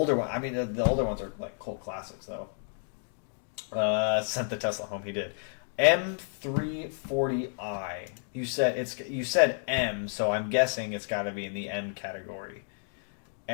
one, the older ones are like cult classics though. Sent the Tesla home. He did. M340i. You said M, so I'm guessing it's got to be in the M category.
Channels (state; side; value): silent; right; 57 dB below the other